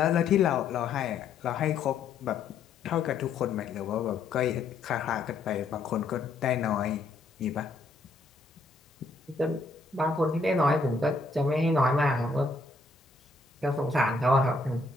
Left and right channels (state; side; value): quieter; right; 3.6 dB